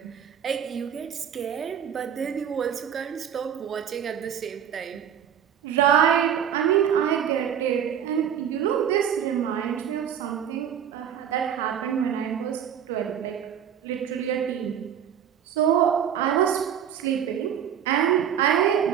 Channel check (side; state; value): left; quieter; 8.9 dB